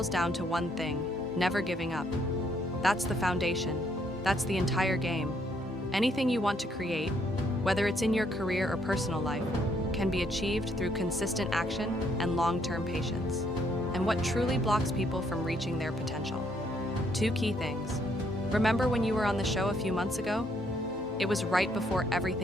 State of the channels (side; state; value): both; normal; correlation 0.70